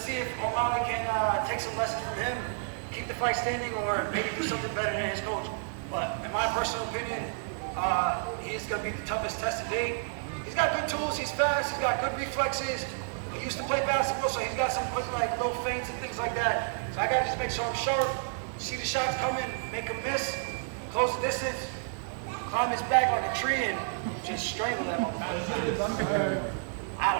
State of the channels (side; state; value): left; silent; digital silence